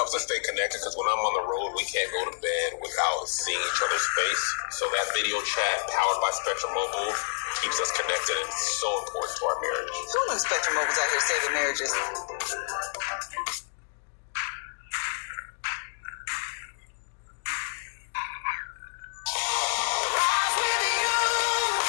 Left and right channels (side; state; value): right; silent; digital silence